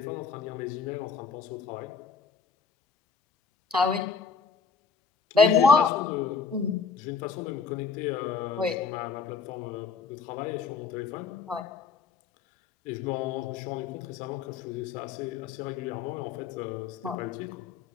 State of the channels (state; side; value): quieter; right; 5.3 dB